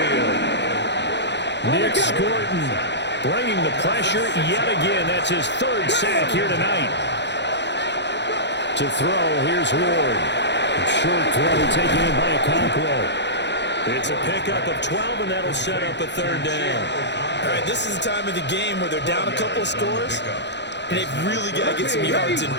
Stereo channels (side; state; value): right; late; 0.51 ms